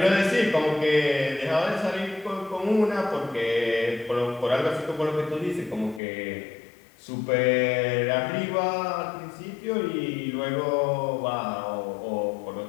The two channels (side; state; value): right; drops out; at 6.0 s